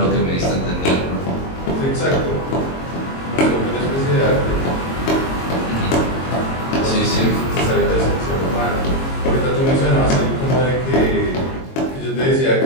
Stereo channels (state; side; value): late; right; 22 ms